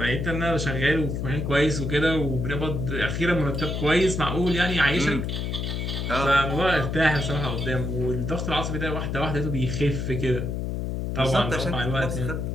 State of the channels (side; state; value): left; noise; hum, 2 dB below the sound